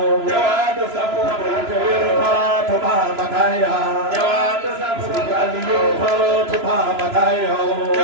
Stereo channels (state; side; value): late; left; 3.0 ms